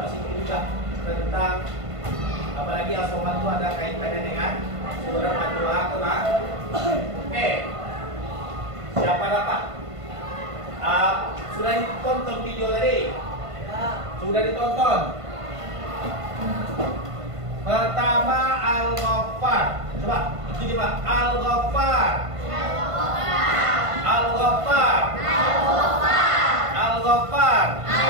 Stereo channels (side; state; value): left; late; 1.5 ms